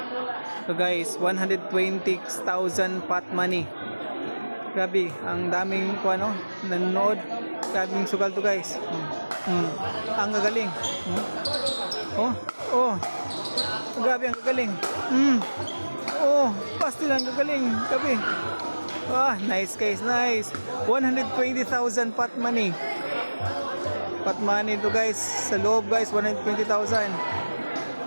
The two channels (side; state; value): both; inverted; correlation -1.00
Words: So guys, 120,000 pot money. Grabe, ang daming ano, nanonood. Daming sugal to guys. Ang gagaling. Oh. Grabe ang gagaling. Oh, pastil ang gagaling. Grabe. Nice guys, nice. 120,000 pot money. Pot money to guys. Sa loob guys, 120,000.